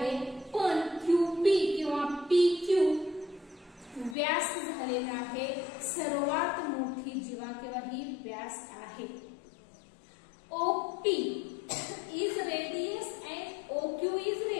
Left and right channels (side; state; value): right; drops out; at 4.2 s